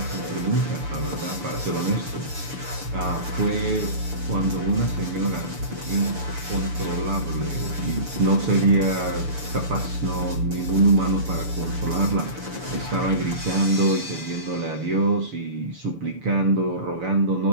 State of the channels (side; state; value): left; late; 6.9 ms